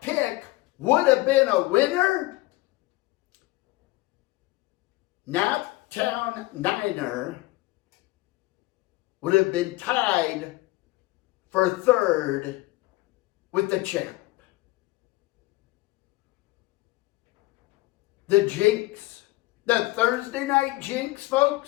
pick would have been a winner, Naptown Niner would have been tied for third with the champ. The jinx, the Thursday night jinx,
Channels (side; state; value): right; quieter; 20.1 dB